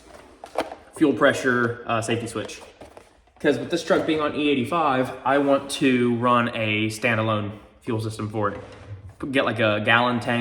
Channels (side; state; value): both; identical; correlation 1.00